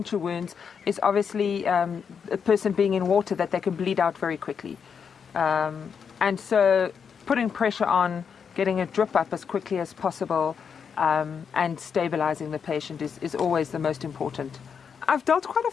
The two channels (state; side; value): quieter; right; 6.7 dB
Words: wounds is obviously a person being in water, that they can bleed out very quickly. And so putting pressure on, getting a drip up as quickly as possible, and stabilizing the patient is always the most important. I've dealt quite a